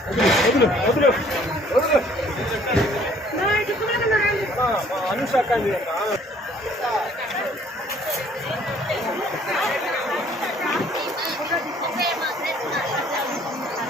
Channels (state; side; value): normal; both; correlation 0.59